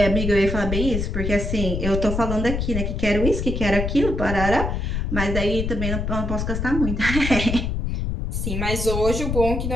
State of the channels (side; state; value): left; noise; rumble, 2 dB below the sound